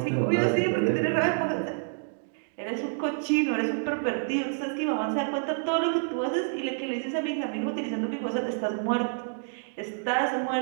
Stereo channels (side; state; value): left; silent; digital silence